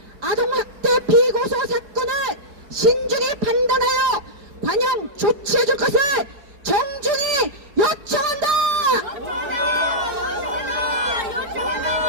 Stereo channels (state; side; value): late; left; 4.7 ms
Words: 아동학대 비고소 사건을 신중히 판단하여 관영 조치해줄 것을 정중히 요청한다.